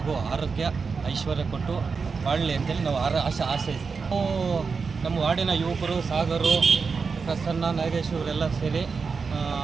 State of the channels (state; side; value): quieter; left; 5.1 dB